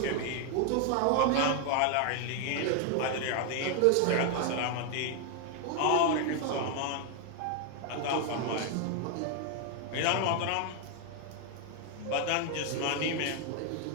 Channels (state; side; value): different; both; correlation 0.01